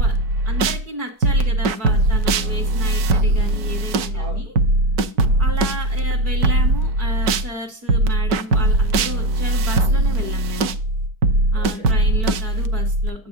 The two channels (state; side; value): late; left; 4.6 ms